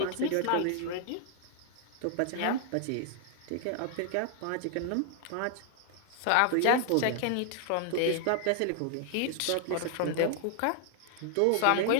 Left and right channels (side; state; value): both; different; correlation 0.00